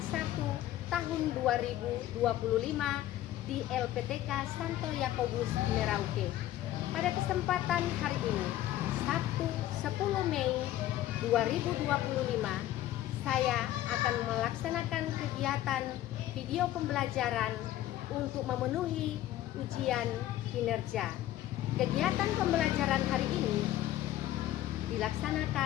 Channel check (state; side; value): quieter; right; 13.9 dB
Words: 1 tahun 2025 di LPTK Santo Yakobus Merauke. Pada kesempatan hari ini, Sabtu 10 Mei 2025, saya akan melaksanakan kegiatan video pembelajaran untuk memenuhi ujian kinerja. Kegiatan pembelajaran hari ini